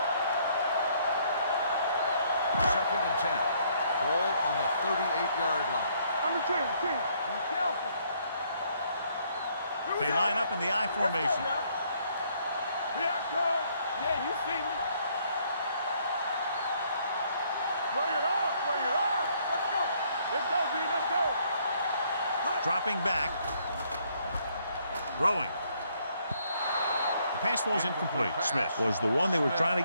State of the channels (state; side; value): inverted; both; correlation -0.67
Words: Second and 10. Ball on the 38-yard line. Under 10. Be careful. They line up in the I formation. Here I come. Yeah, you see me. Bring it on. Let's go, D. Let's go. Dropping back. Throwing. The pass ball's incomplete. Smith was the one they were trying to